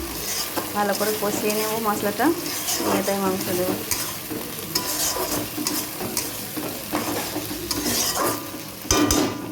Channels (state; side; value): identical; both; correlation 1.00